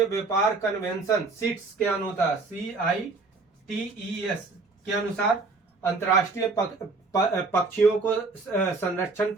व्यापार कन्वेंशन सीट्स के अनुसार CITES के अनुसार अंतर्राष्ट्रीय पक्षियों को संरक्षण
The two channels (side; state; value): left; quieter; 3.8 dB